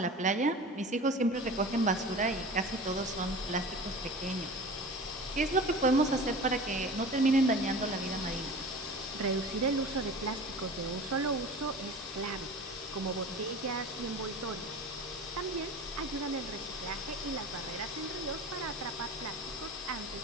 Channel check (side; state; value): both; normal; correlation 0.37